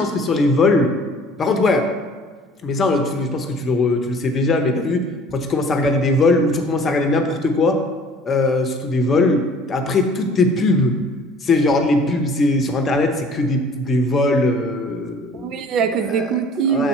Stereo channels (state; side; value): normal; both; correlation 0.51